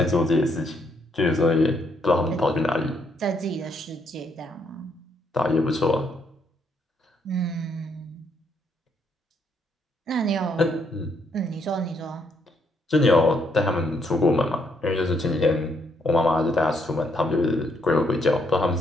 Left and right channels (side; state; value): both; normal; correlation 0.73